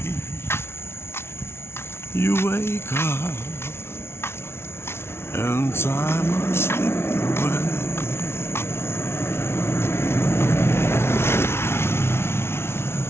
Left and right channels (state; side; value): late; right; 0.12 ms